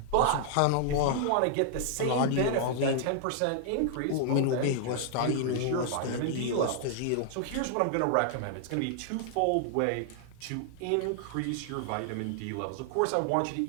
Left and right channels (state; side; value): different; both; correlation 0.00